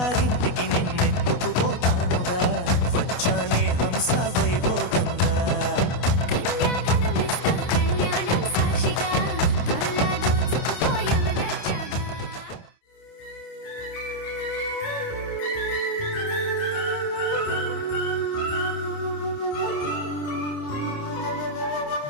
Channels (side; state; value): right; late; 28 ms